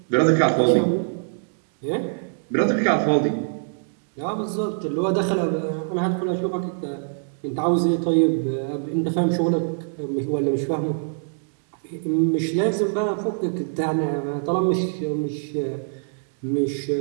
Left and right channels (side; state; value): left; silent; digital silence